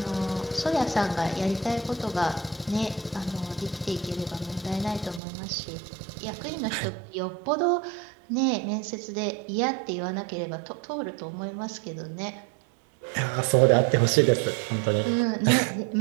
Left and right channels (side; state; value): left; drops out; at 5.2 s